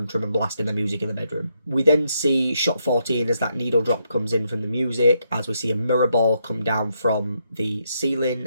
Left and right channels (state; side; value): inverted; both; correlation -0.78